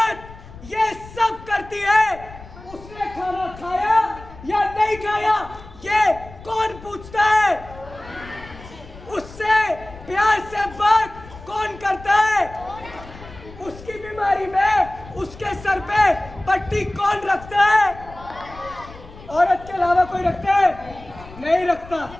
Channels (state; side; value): noise; left; rumble, 18 dB below the sound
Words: ये सब करती है, उसने खाना खाया या नहीं खाया, ये कौन पूछता है? उससे प्यार से बात कौन करता है? उसकी बीमारी में उसके सर पे पट्टी कौन रखता है? औरत के अलावा कोई रखता है? नहीं रखता।